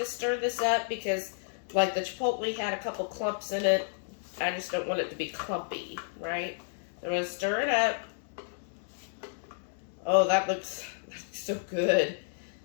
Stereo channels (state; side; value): silent; right; digital silence